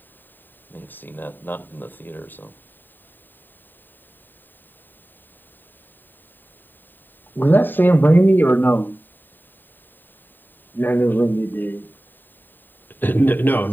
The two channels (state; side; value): late; right; 0.092 ms